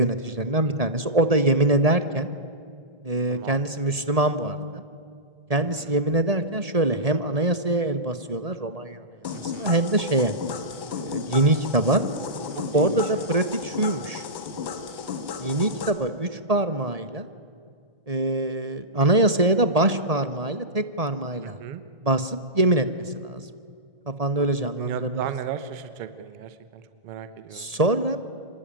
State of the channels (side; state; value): left; late; 1.8 ms